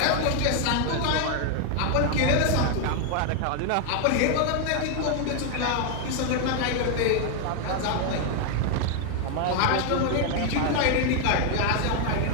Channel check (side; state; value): both; different; correlation 0.00